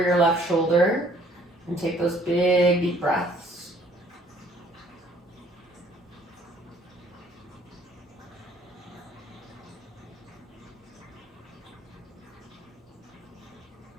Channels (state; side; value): normal; both; correlation 0.60